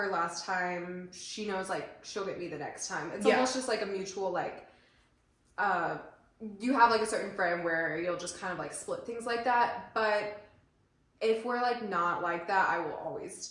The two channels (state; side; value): identical; both; correlation 1.00